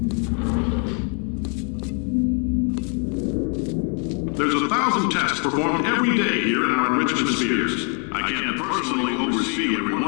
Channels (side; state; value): right; quieter; 38.4 dB